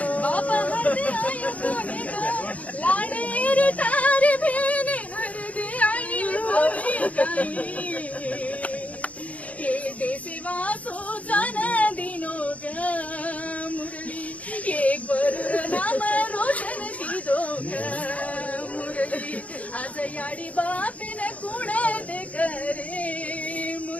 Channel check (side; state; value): right; late; 0.068 ms